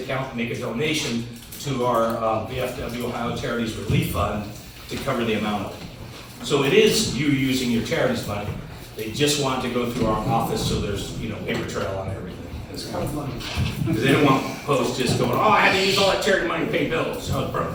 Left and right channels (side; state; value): both; identical; correlation 1.00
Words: and make a donation to our VFW Ohio Charities Relief Fund to cover the amount of it. So it is you using your charities money. They just want to go through our office so there's, you know, paper trail on everything. It's kind of funny. Because they don't want posts just going, oh, I had to use all that charity money to pay bills. Oh, bro,